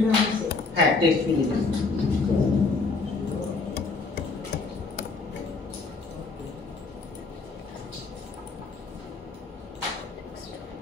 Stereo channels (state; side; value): quieter; right; 4.1 dB